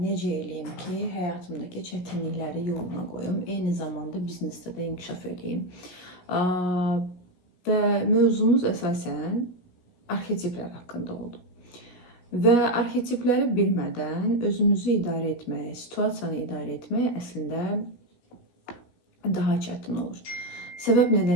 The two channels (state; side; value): late; right; 17 ms